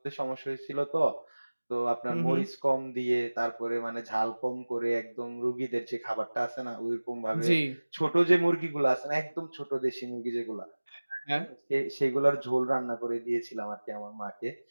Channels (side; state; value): both; inverted; correlation -1.00